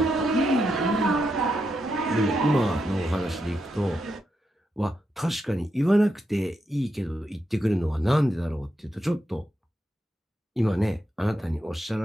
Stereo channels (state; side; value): normal; both; correlation 0.84